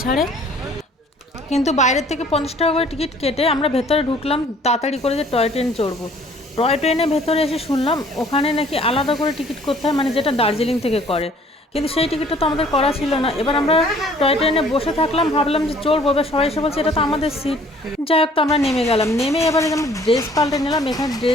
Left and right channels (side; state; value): both; normal; correlation 0.56